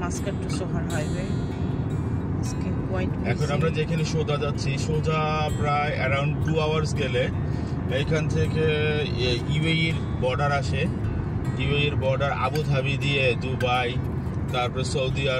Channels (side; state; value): both; identical; correlation 1.00